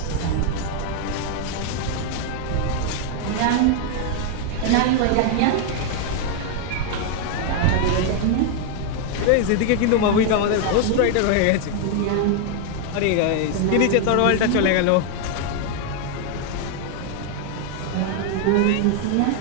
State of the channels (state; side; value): different; both; correlation 0.00